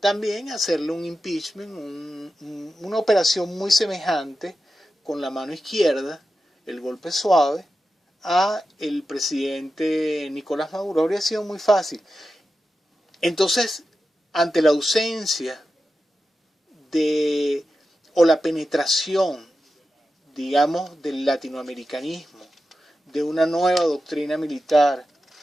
hacerle un impeachment, una operación muy semejante con la mano izquierda, el golpe suave, a el presidente Nicolás Maduro. Habría sido muy fácil. Entonces, ante la ausencia o la penetración, digamos, del latinoamericanismo, de una nueva doctrina militar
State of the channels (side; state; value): both; normal; correlation 0.91